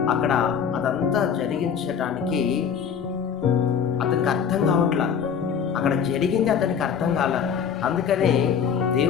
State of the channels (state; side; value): quieter; right; 7.4 dB